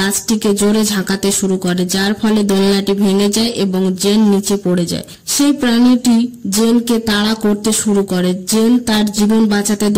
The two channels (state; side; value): identical; both; correlation 1.00